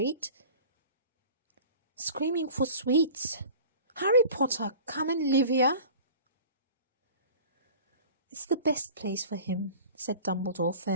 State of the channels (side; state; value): both; inverted; correlation -0.42